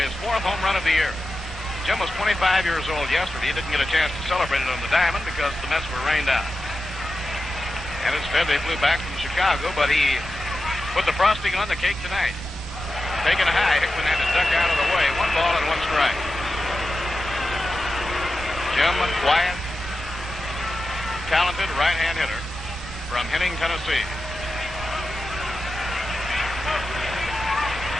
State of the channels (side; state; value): both; normal; correlation 0.91